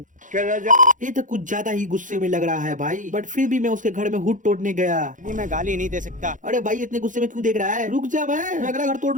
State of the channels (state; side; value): late; left; 0.37 ms